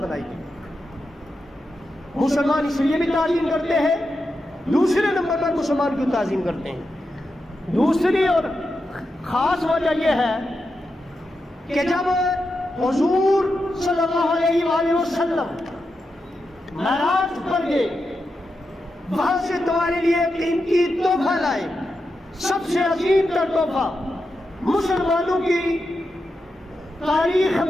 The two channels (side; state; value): both; normal; correlation 0.88